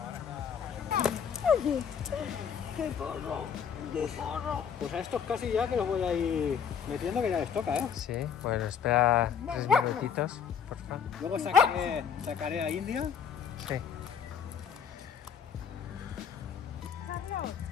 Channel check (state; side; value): quieter; right; 7.4 dB